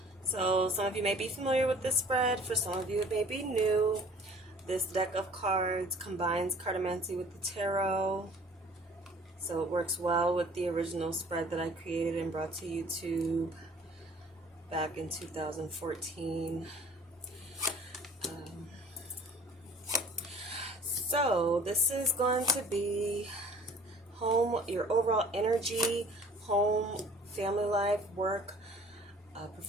So some of you may be familiar with this spread. For some of you it may be new. This deck of cards combines cartomancy with the tarot. So it works well with the original spread that I created and brought to YouTube back in 2014. So this is going to be home, your overall energy, home, family life, work,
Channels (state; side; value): normal; both; correlation 0.51